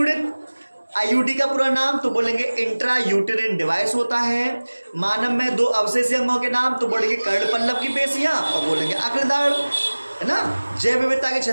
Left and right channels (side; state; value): both; inverted; correlation -1.00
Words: आईयूडी का पूरा नाम तो बोलेंगे इंट्रा यूटेरिन डिवाइस होता है। मानव में 2 अवशेषी अंगों के नाम तो बोलेंगे कर्णपल्लव की पेशियां और बोलेंगे अग्रदाढ़, है ना। जैव विविधता की